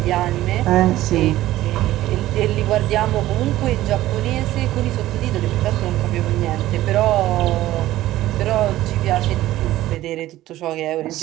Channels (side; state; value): left; quieter; 15.2 dB